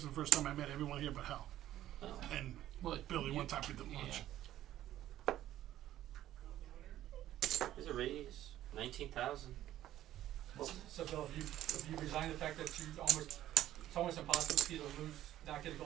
is the first time I met everyone here but Hal. Oh. And Billy, one time we did lunch. Here's a raise. 19,000. So Bill, have you resigned the fact that it's almost impossible for you to lose, not get a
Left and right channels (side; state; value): left; quieter; 13.1 dB